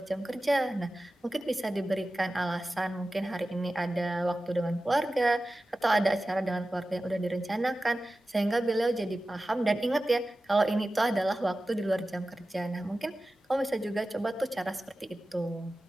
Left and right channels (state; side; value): normal; both; correlation 0.95